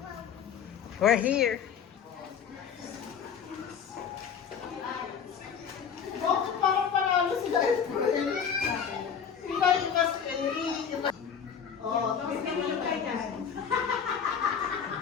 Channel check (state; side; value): quieter; right; 7.3 dB